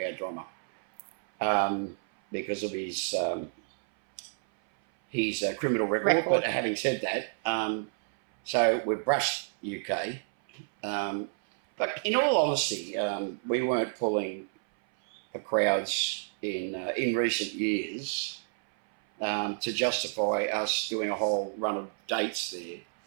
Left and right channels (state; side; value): silent; left; 58 dB below the other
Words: our drummer, because of his criminal record. But having said that, so we've brushed UK. But in all honesty, we weren't pulling the crowds in recent years to justify us doing a whole run of dates there.